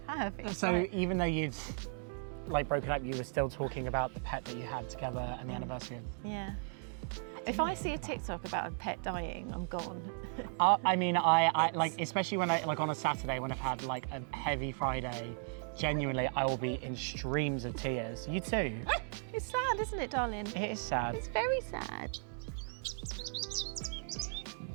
have. It's So like, even though you'd like broken up, you were still talking about the pet that you had together and the anniversary of. yeah. If I see a TikTok about a pet dying, I'm gone. I mean, I like, especially when I, like on a Saturday when I've had like a heavy Friday, genuinely I will be in streams of tears. You too? It's sad, isn't it, darling? It is sad. It's very sad.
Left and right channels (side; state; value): left; silent; 54 dB below the other